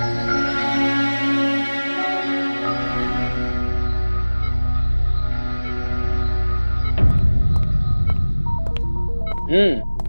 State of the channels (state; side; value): inverted; both; correlation -1.00